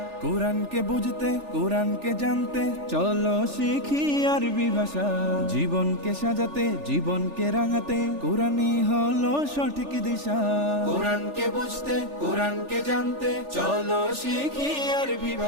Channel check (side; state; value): left; late; 3.4 ms